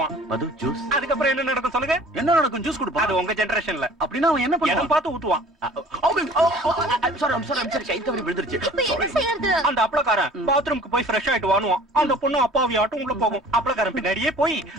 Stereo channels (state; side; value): normal; both; correlation 0.49